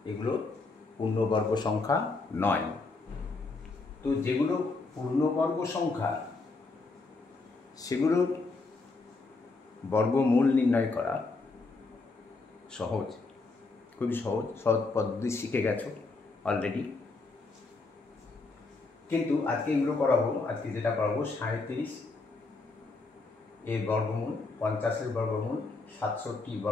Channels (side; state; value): right; quieter; 3.7 dB